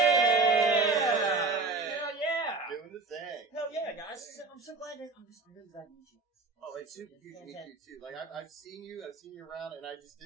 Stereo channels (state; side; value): quieter; left; 3.7 dB